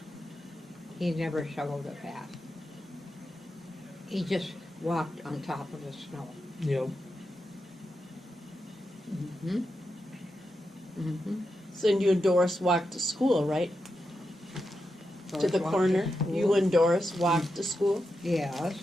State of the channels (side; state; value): both; normal; correlation 0.87